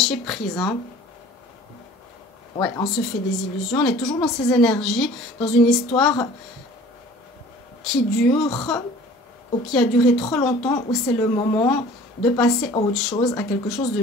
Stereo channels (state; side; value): normal; both; correlation 0.47